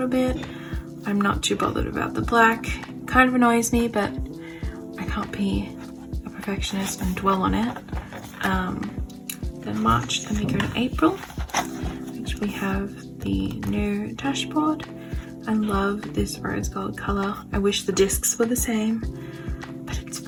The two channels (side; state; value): both; identical; correlation 1.00